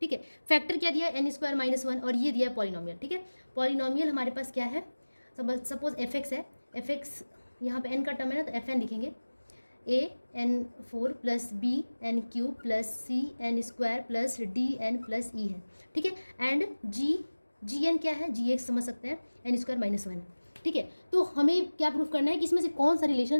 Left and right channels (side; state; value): both; inverted; correlation -1.00